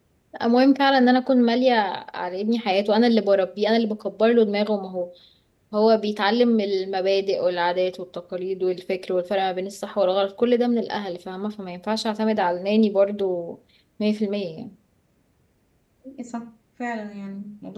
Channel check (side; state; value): both; identical; correlation 1.00